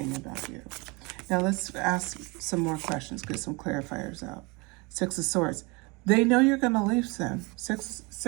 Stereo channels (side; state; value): left; quieter; 27.4 dB